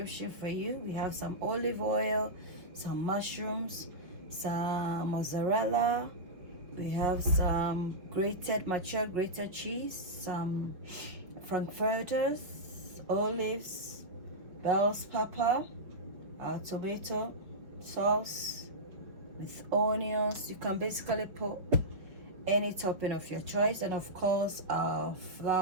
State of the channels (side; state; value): left; late; 5.5 ms